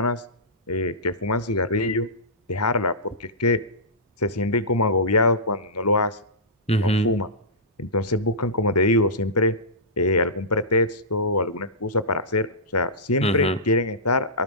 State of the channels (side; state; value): both; normal; correlation -0.18